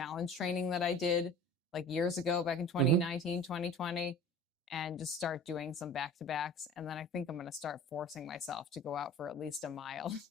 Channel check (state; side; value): normal; both; correlation 0.42